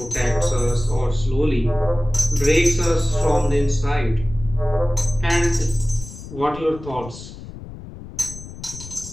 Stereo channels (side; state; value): left; noise; rumble, 14 dB below the sound